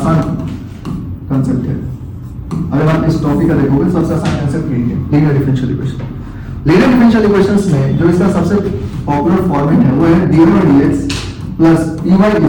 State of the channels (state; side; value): identical; both; correlation 1.00